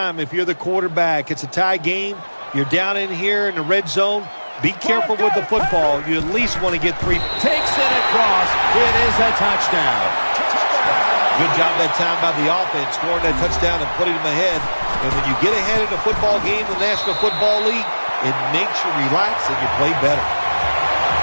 if you're the quarterback. It's a tie game. You're down in here in the red zone. Be careful with the football. You at least want to get 3. Takes it across. It is a touchdown. Good job that time by the offense, scoring that touchdown and putting them ahead. And when you get ahead in a football game in the National Football League, it makes you relax and you play better.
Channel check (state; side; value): inverted; both; correlation -1.00